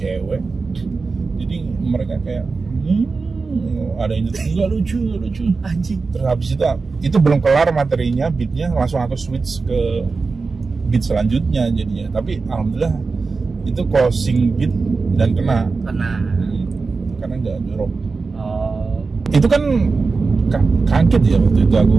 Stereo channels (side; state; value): left; quieter; 4.3 dB